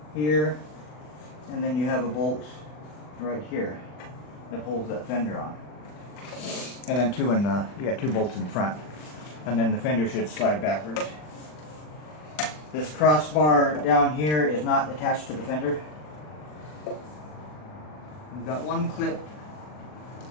here, and then you have a bolt right here that holds that fender on. And then you got 2 bolts in front, and then the fender should slide backwards. This crossbar down here is not attached to the fender. We've got one clip.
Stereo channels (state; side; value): late; right; 40 ms